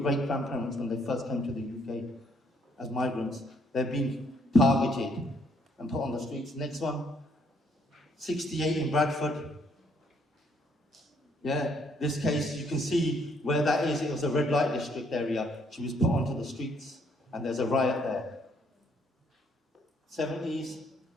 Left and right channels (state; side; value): normal; both; correlation 0.69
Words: when they first came to the UK as migrants, they've been targeted and put on the streets. Next one, 68 in Bradford. Yeah, this case, you can see where that is. It was a red light district area. She was put onto the streets, and there's a riot there. 70s,